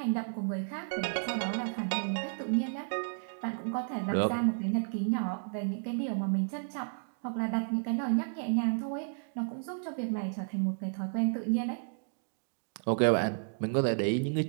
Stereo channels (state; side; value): silent; left; digital silence